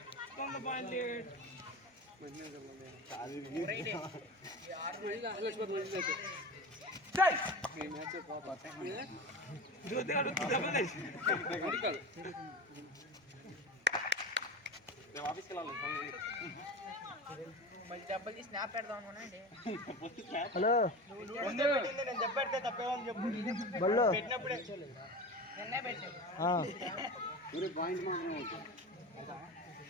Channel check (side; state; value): both; normal; correlation 0.29